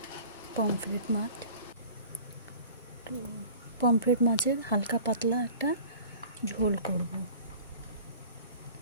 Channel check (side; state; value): both; inverted; correlation -0.44